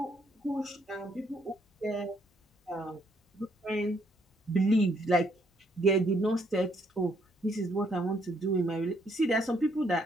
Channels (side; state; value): both; normal; correlation 0.70